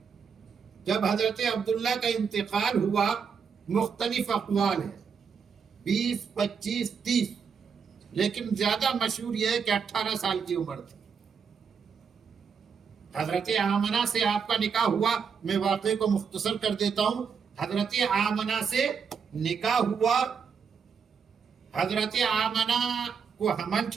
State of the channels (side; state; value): left; quieter; 6.3 dB